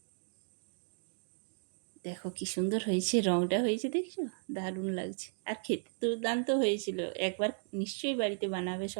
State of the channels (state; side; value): silent; left; digital silence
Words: দেখো কি সুন্দর হয়েছে, রঙটা হয়েছে দেখছো, দারুণ লাগছে। আর খেতে দুর্দান্ত হয়েছিল। একবার নিশ্চয়ই বাড়িতে বানাবে